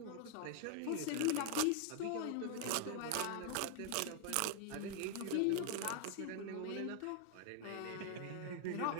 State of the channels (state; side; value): different; both; correlation 0.01